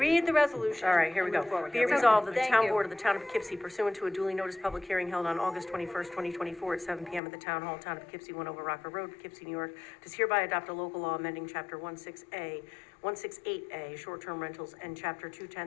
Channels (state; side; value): drops out; right; at 7.2 s